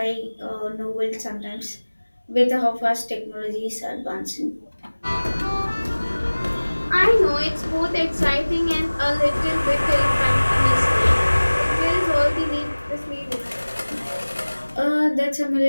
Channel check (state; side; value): inverted; both; correlation -1.00